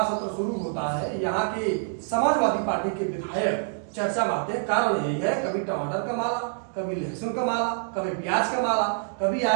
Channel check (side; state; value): left; silent; digital silence